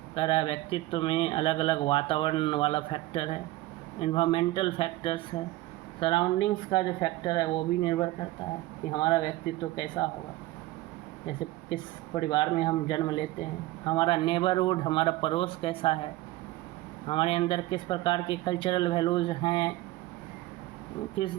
कह रहा है व्यक्तित्व में अलग अलग वातावरण वाला फैक्टर है, इन्वायरमेंटल फैक्टर्स है, सराउंडिंग्स का जो फैक्टर है वो भी निर्भर करता है कि हमारा व्यक्तित्व कैसा होगा। जैसे किस परिवार में हम जन्म लेते हैं, हमारा नेबरहुड, हमारा पड़ोस कैसा है, हमारे अंदर किस प्रकार के कल्चरल वैल्यूज़ हैं,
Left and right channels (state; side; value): quieter; left; 17.8 dB